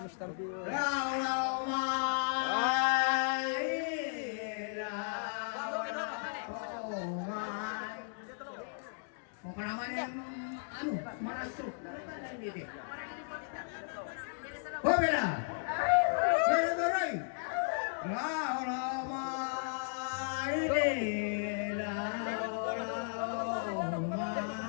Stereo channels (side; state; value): right; silent; digital silence